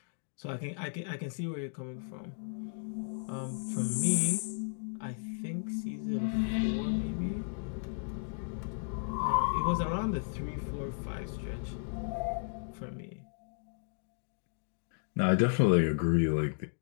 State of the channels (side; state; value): right; silent; digital silence